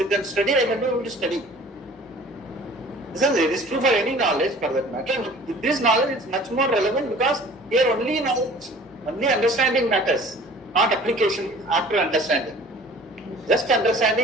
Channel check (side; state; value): both; normal; correlation 0.48